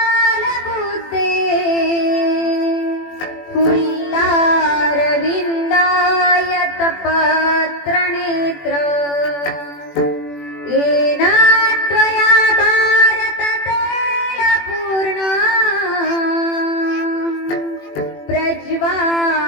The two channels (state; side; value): late; right; 21 ms